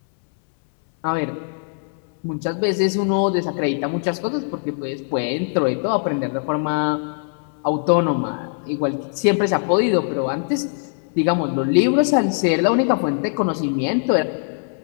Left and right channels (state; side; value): silent; right; 65 dB below the other